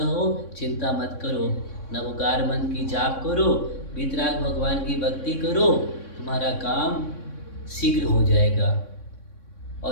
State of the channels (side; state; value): right; late; 3.6 ms